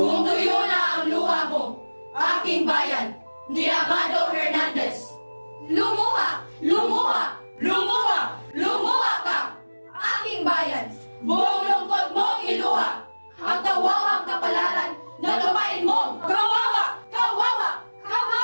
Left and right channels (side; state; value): both; inverted; correlation -1.00